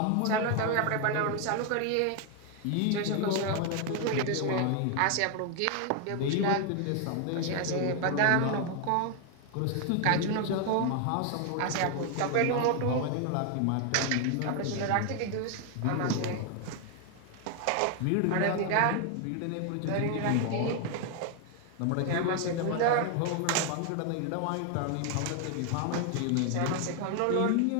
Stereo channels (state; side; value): different; both; correlation 0.00